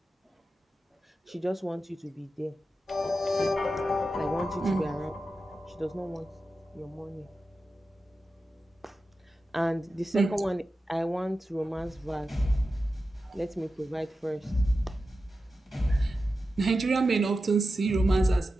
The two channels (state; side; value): normal; both; correlation 0.92